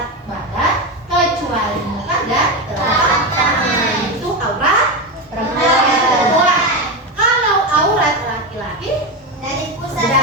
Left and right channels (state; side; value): normal; both; correlation 0.15